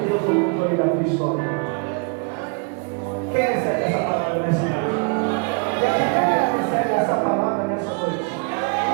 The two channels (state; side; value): quieter; left; 36.6 dB